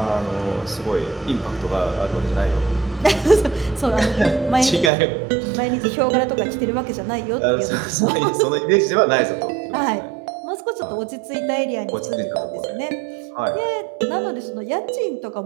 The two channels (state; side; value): drops out; left; at 4.9 s